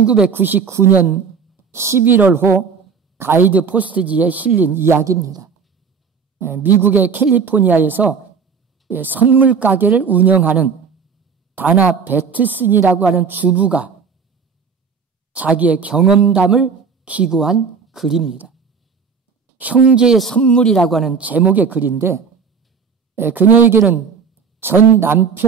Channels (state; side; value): quieter; left; 5.9 dB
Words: 11월호 가이드 포스트지에 실린 이야기입니다. 미국의 캘리포니아에서 선물 가게를 운영하는 다나 베트슨이라고 하는 주부가 자기의 경험담을 기고한 글입니다. 형제의 선물이라고 하는 제목의 글인데, 그녀에게는 전